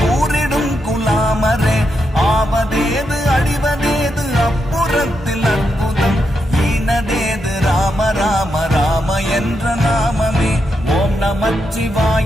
கூறிடும் குலாமரே ஆவதேது அழிவதேது அப்புறத்தில் அற்புதம் ஈனதேது ராம ராம ராம என்ற நாமமே ஓம்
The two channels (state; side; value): normal; both; correlation 0.83